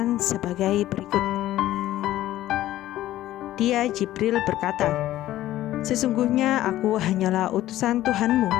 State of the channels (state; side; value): quieter; right; 14.3 dB